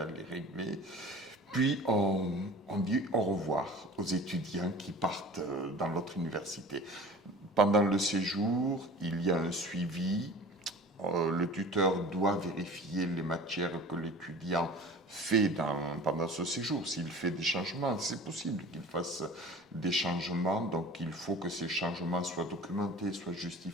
les régler. Puis on dit au revoir aux étudiants qui partent dans l'autre université. Pendant le séjour, il y a un suivi. Le tuteur doit vérifier les matières que l'étudiant fait pendant ce séjour. S'il fait des changements, c'est possible qu'il fasse des changements, donc il faut que ces changements soient documentés, soient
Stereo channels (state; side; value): normal; both; correlation 0.42